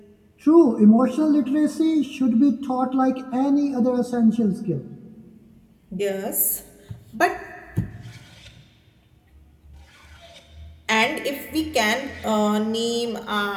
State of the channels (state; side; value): identical; both; correlation 1.00